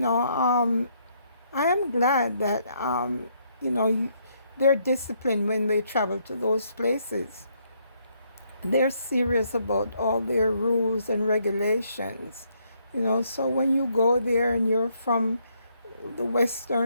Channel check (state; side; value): inverted; both; correlation -0.72